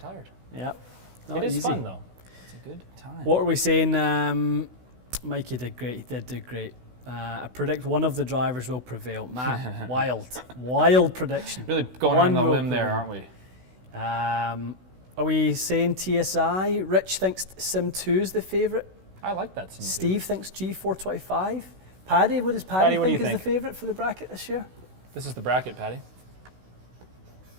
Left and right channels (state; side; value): late; left; 16 ms